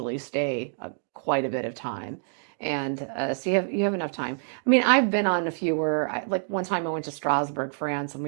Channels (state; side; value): silent; left; digital silence